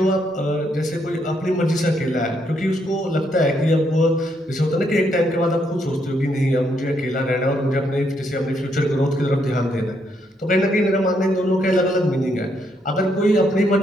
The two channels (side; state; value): both; normal; correlation 0.75